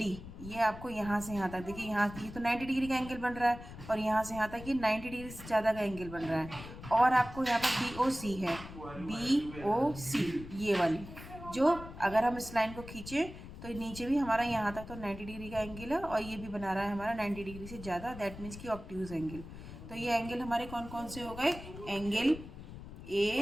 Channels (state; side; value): noise; left; rumble, 13 dB below the sound